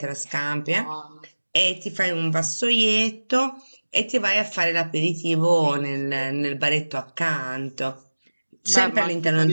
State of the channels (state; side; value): inverted; both; correlation -1.00